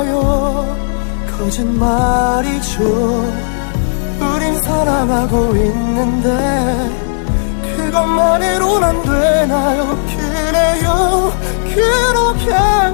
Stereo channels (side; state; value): right; silent; digital silence